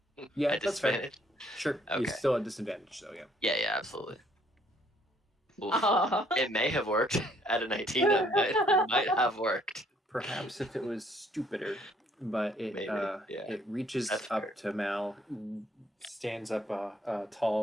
Yeah, At that's fair. disadvantage? Sure, Okay. you're still at disadvantage, though, yeah. Yeah, absolutely. Oof. Aw. It may have worked at a 19. It might have worked. Perhaps if it was stupider, but it Maybe, yeah. it reaches That's up fair. to Mal, stands up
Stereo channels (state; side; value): normal; both; correlation 0.65